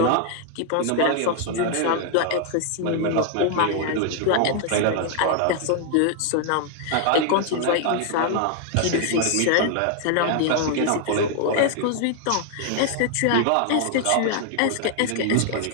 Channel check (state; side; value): different; both; correlation 0.00